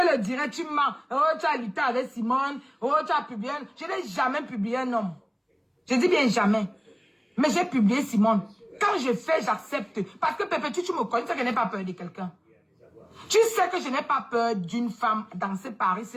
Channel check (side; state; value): both; identical; correlation 1.00